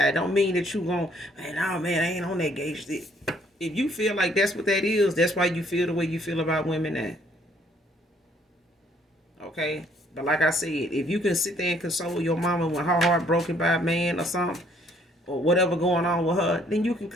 Don't mean that you gon', man, I ain't on that gauge. If you feel like that's what that is, that's why you feel the way you feel about women now. Okay? But like I said, if you can sit there and console your mama when her heart broken by a man or something, or whatever going on with her, then you can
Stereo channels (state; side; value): normal; both; correlation 0.64